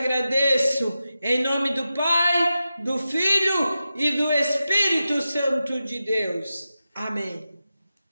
em nome do Pai, do Filho e do Espírito Santo de Deus. Amém.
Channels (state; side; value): inverted; both; correlation -0.92